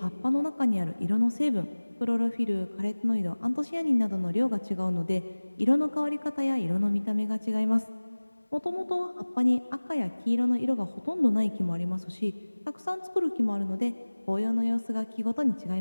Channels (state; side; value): inverted; both; correlation -1.00